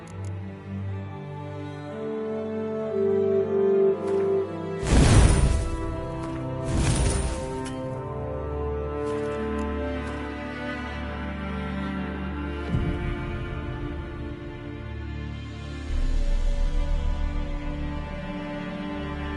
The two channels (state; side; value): identical; both; correlation 1.00